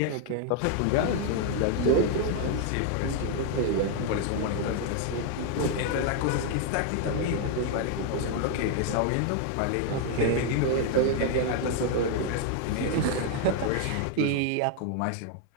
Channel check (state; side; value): different; both; correlation 0.00